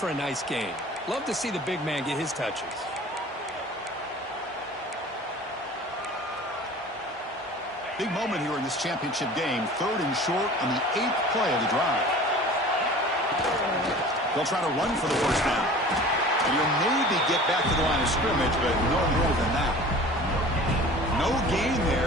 a nice gain. Love to see the big man get his touches. Big moment here in this championship game. 3rd and short on the 8th play of the drive. They'll try to run for the first down. And you'll maybe get back to the line of scrimmage, but no more than that. No gain there.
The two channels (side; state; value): both; normal; correlation 0.42